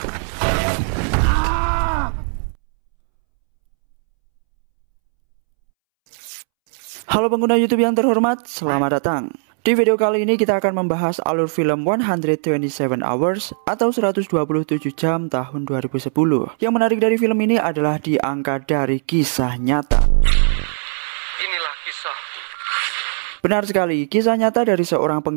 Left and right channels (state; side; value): silent; left; 67 dB below the other